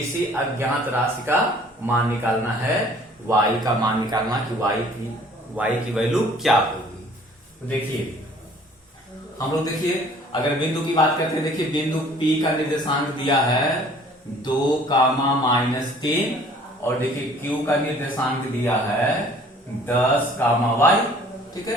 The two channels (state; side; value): normal; both; correlation 0.54